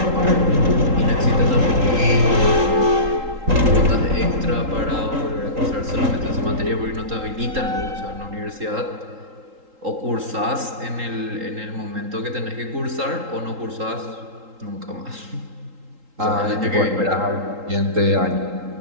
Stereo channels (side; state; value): left; late; 3.8 ms